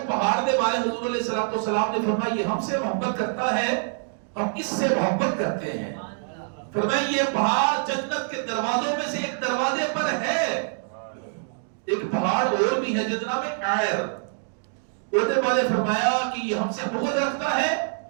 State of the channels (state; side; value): silent; left; digital silence